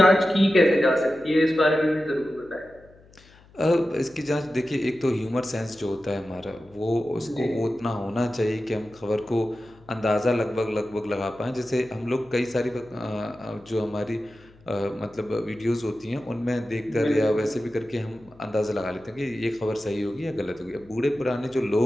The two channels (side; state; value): left; noise; hum, 26 dB below the sound